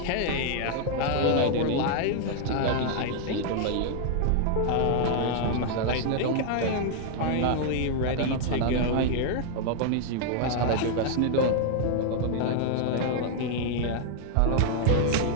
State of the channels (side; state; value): both; different; correlation 0.00